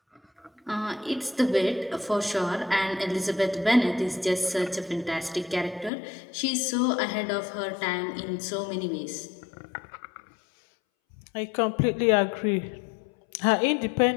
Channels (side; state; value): right; drops out; at 5.9 s